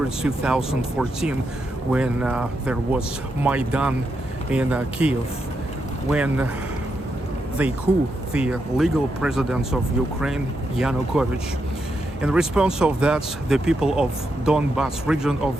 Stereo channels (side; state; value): both; normal; correlation 0.83